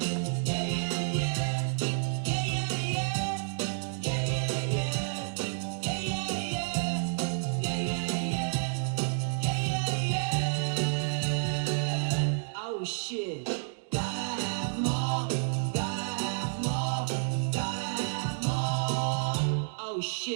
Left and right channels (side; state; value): left; silent; digital silence